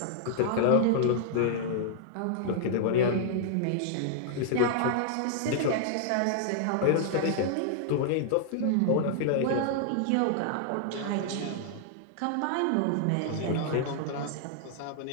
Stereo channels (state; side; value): different; both; correlation -0.01